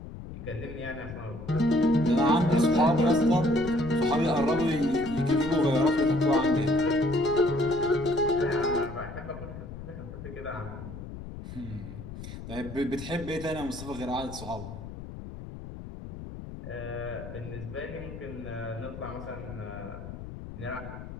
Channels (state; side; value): noise; left; rumble, 11 dB below the sound